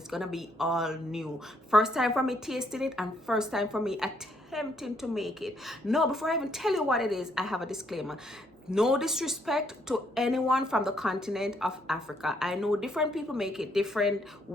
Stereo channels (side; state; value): both; normal; correlation 0.71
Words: going to be all new. First time for me tasting it and first time for me attempting to make it. No, before I even tell you what it is, I have a disclaimer. No disrespect to anyone from the continent of Africa. I know different people make it different